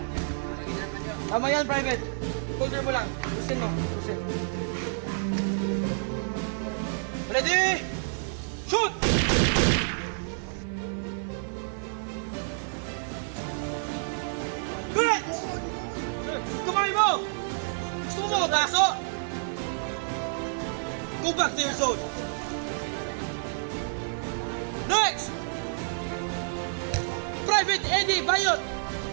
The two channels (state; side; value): silent; left; 59 dB below the other